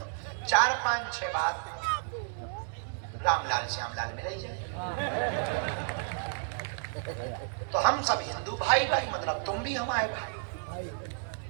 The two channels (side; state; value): left; silent; digital silence